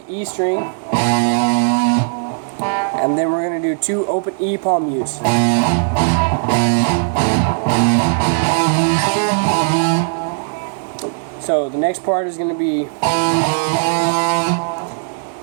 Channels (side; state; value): left; silent; digital silence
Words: the E string, and then we're going to do 2 open E palm mutes. So the next part is going to be